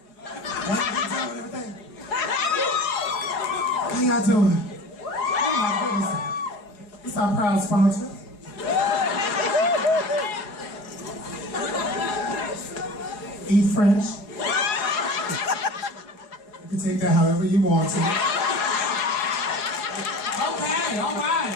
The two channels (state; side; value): late; right; 4.8 ms